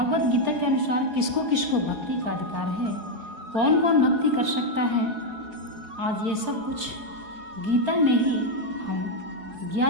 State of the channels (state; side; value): late; left; 4.8 ms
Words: गीता के अनुसार किसको किसको भक्ति का अधिकार है, कौन कौन भक्ति कर सकता है, आज ये सब कुछ गीता में ही हम